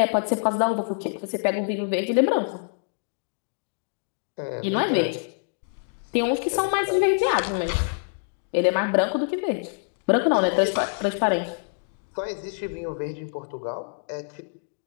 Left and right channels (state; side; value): silent; right; digital silence